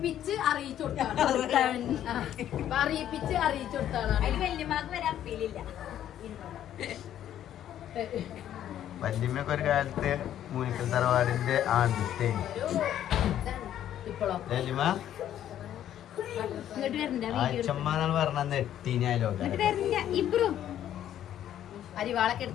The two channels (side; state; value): right; quieter; 11.2 dB